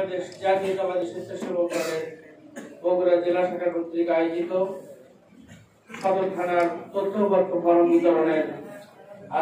জাতীয়তাবাদী স্বেচ্ছাসেবক দলের বগুড়া জেলা শাখা কর্তৃক আয়োজিত সদর থানার তথ্যপত্র ফরম বিতরণের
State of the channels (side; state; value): both; identical; correlation 1.00